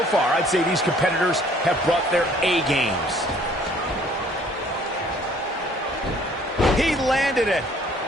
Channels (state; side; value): normal; both; correlation 0.58